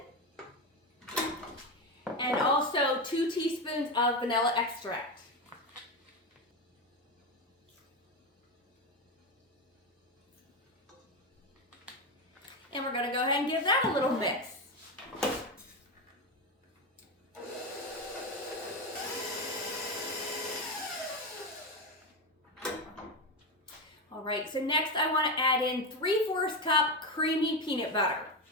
And also 2 teaspoons of vanilla extract. And we're going to go ahead and give that a little mix. All right, so next I want to add in 3/4 cup creamy peanut butter.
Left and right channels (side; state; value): both; normal; correlation 0.15